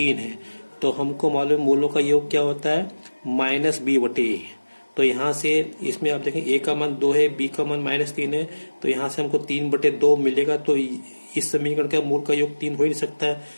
है। तो हमको मालूम मूलों का योग क्या होता है? माइनस बी बटे ए। तो यहाँ से इसमें आप देखें ए का मान 2 है, बी का मान -3 है, तो यहाँ से हमको 3 बटे 2 मिलेगा। तो इस समीकरण का मूल का योग 3 हो ही नहीं सकता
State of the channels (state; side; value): inverted; both; correlation -1.00